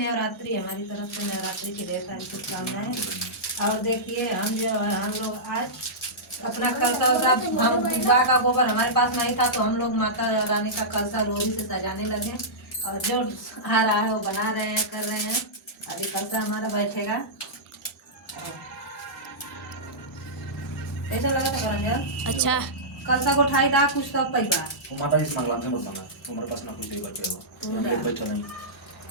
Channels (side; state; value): both; normal; correlation -0.14